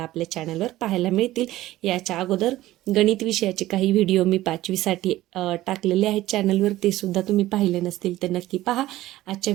आपल्या चॅनलवर पाहायला मिळतील. याच्या अगोदर गणित विषयाचे काही व्हिडिओ मी 5वीसाठी टाकलेले आहेत चॅनलवर, ते सुद्धा तुम्ही पाहिले नसतील तर नक्की पहा. आजच्या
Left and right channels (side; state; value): left; quieter; 15.9 dB